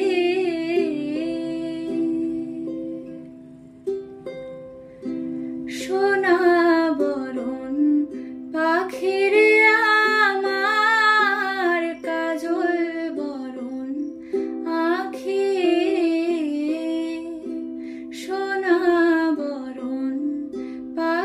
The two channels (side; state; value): both; identical; correlation 1.00